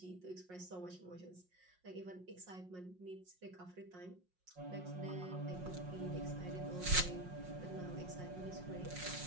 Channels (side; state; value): left; late; 5.5 ms